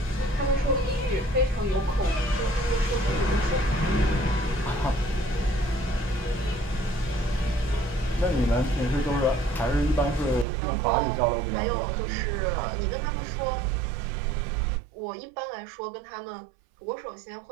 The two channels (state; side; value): drops out; left; at 10.5 s